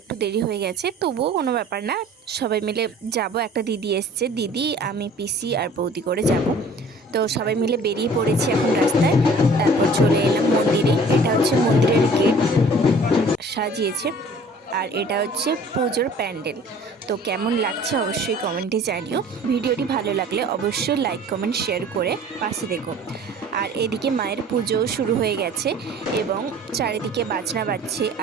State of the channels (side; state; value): both; normal; correlation 0.49